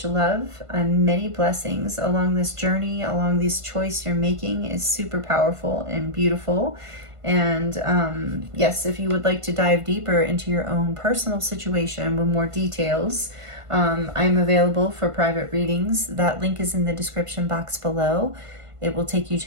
love and many blessings along this journey, along this choice you're making is super powerful and beautiful. And yes, if you would like to dive deeper into your own personal situation with more details, I'm available for private readings. That link is in the description box below. It will take you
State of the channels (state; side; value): late; left; 1.5 ms